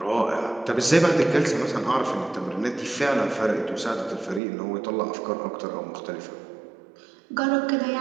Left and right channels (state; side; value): drops out; left; at 4.4 s